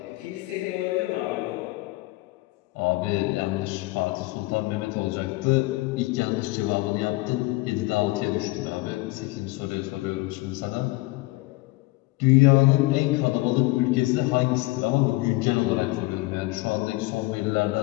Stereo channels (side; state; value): right; quieter; 21.4 dB